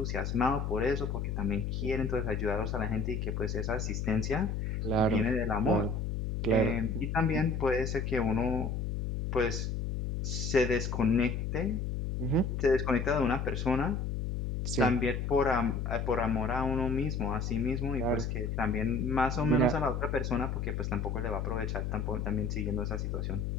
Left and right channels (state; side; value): noise; left; hum, 2 dB below the sound